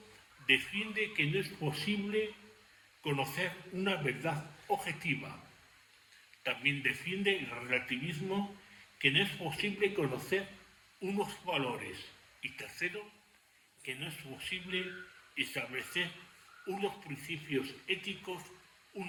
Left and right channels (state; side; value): identical; both; correlation 1.00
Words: defiende que no es posible conocer una verdad objetiva. También defiende el relativismo que no es posible conocer unos valores. Y tercero, que no es posible establecer unos principios éticos